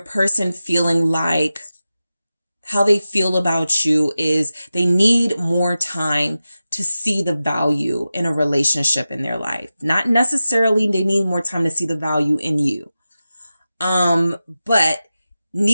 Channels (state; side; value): inverted; both; correlation -0.93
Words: person feeling like how they feel about you is they need more time to see the value in a relationship in their life. Not necessarily they need more time to see the value in you. But